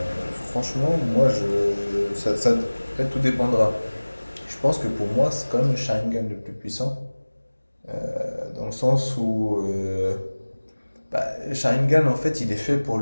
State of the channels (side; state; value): both; inverted; correlation -1.00